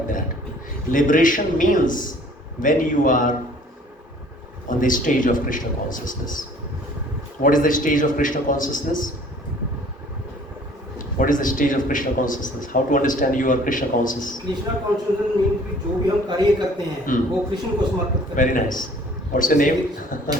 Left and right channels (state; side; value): normal; both; correlation 0.53